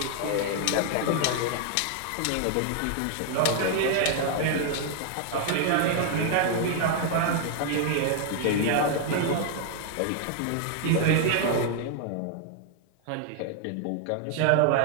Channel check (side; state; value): both; different; correlation 0.00